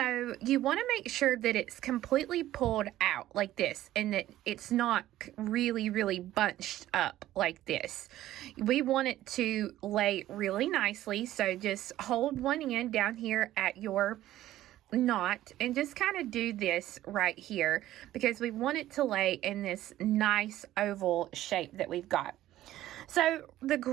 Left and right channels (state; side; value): quieter; left; 14.1 dB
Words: you want to make sure that it's completely pulled out like this and that it's not really bunched up like this. We want it to lay really nicely, so just hold one end down here at your knot and just kind of do this right here because we want it to lay in this nice oval shape that we've got. So the